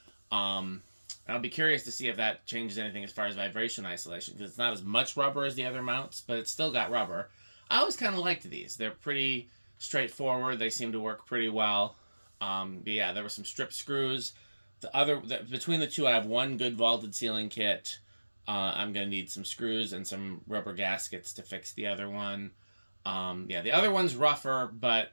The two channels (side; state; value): both; inverted; correlation -1.00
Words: I'll be curious to see if that changes anything as far as vibration isolation, because it's not as much rubber as the other mounts, but it's still got rubber. I always kind of liked these. They're pretty straightforward. They seem to work pretty well. But yeah, there were some strip screws. Between the two, I have one good vaulted ceiling kit. I'm gonna need some screws and some rubber gaskets to fix the other one. Yeah, the other one's rougher,